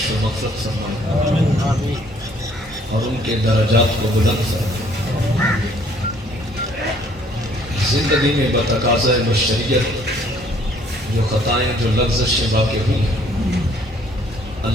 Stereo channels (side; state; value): both; normal; correlation 0.61